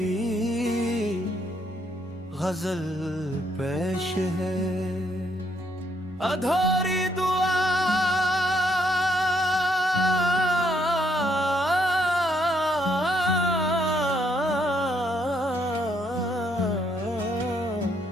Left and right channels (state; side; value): normal; both; correlation 0.72